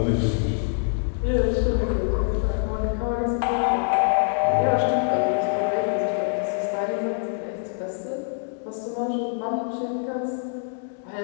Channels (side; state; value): right; silent; digital silence